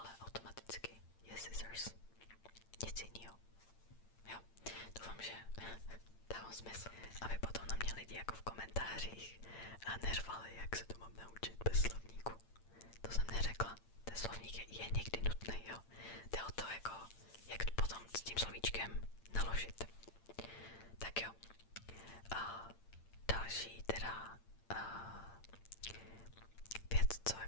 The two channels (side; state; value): right; late; 8.8 ms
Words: automaticky je scissors. Nic jinýho. Jo, doufám, že dávám smysl, aby potom na mě lidi jako v komentářích a nervali, jak se to mám naučit bez slovníku. To jsem neřekla. Ten slovník je někdy nutný, jo.